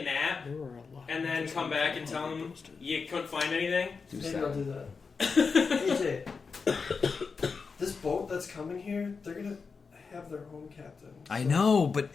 nap There were a lot and of then those come back and tell him you couldn't find anything. Do maybe I'll do that. AJ, this boat that's coming here, they're gonna have their own captain. I So- know, but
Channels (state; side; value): quieter; right; 5.0 dB